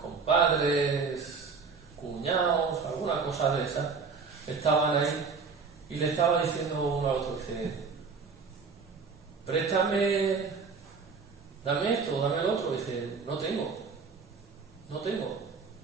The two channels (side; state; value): left; quieter; 5.0 dB